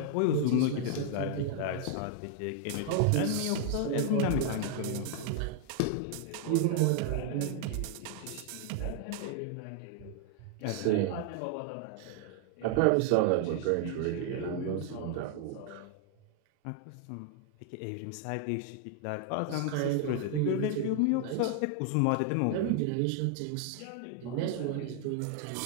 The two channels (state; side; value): different; both; correlation 0.00